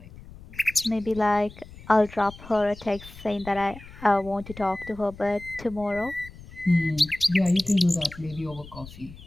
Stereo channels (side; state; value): left; noise; rumble, 18 dB below the sound